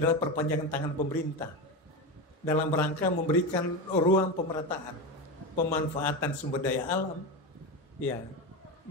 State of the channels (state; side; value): normal; both; correlation 0.18